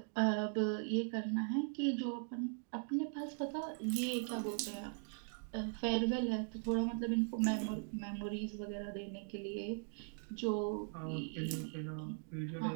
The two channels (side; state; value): left; silent; 51 dB below the other